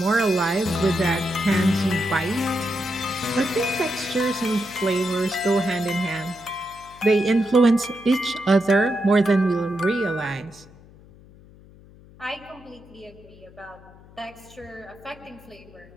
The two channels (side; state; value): left; noise; hum, 23 dB below the sound